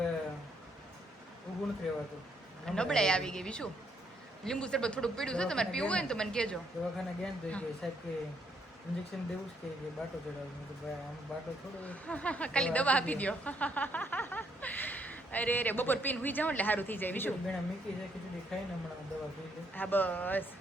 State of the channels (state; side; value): normal; both; correlation 0.71